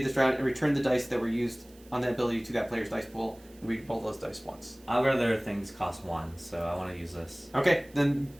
this round and return the dice that were used on that ability to that player's dice pool, and re-roll those dice once. I'd rather things cost 1, so I want to use this. Okay, then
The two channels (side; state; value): right; noise; hiss, 26 dB below the sound